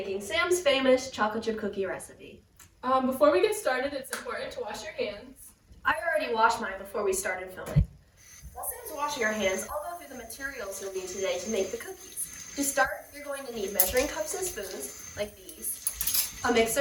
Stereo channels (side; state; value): both; identical; correlation 1.00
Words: Sam's famous chocolate chip cookie recipe. Before we get started, it's important to wash your hands. I already washed mine before we started filming. While Sam's washing her hands, I'll go through the materials you'll need today to make the cookies. To start, you're going to need measuring cups and spoons, like these, a